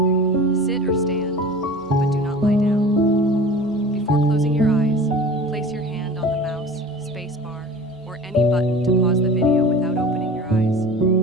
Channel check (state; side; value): normal; both; correlation 0.39